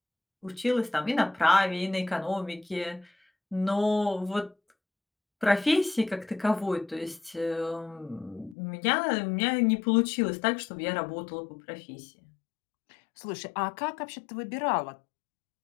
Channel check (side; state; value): right; drops out; at 8.6 s